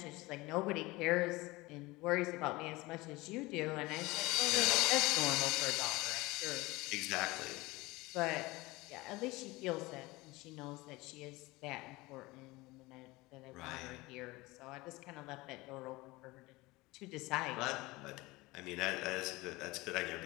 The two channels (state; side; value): quieter; right; 21.5 dB